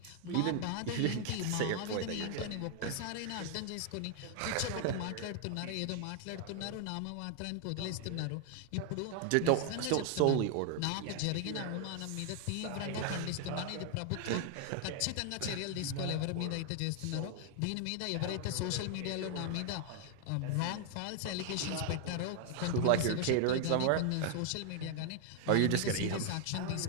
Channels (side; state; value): both; different; correlation 0.00